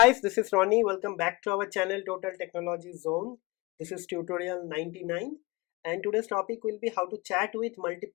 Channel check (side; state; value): right; quieter; 24.3 dB